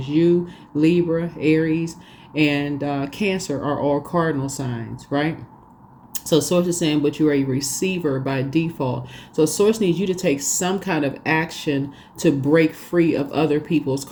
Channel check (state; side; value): identical; both; correlation 1.00